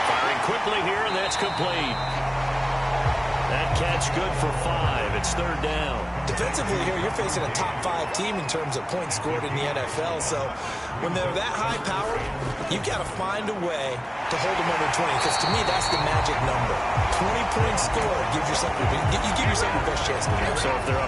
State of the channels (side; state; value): both; identical; correlation 1.00